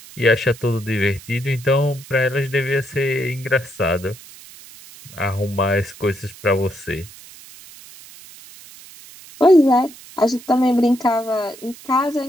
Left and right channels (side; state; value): right; noise; hiss, 19 dB below the sound